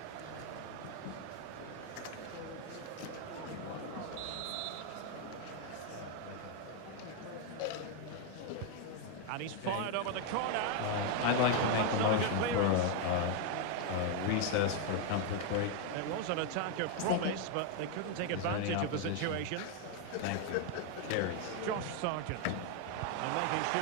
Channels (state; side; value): different; both; correlation 0.01